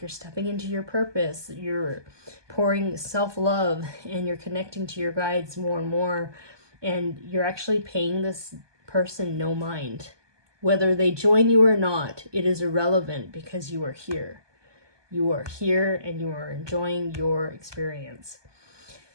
stepping into your purpose, you're pouring self-love, and you're connecting to your guides more and more, and you're actually paying this person no mind. Whether they join you or not, it is irrelevant because you are here. You are here and you are enjoying your experience.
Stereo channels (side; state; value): left; late; 1.2 ms